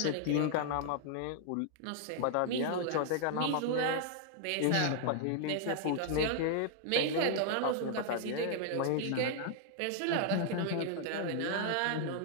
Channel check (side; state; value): both; different; correlation -0.01